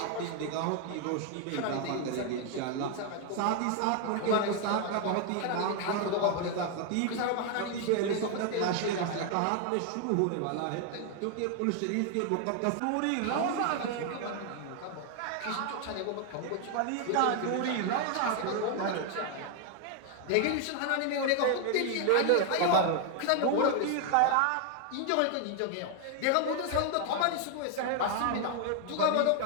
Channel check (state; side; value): different; both; correlation 0.00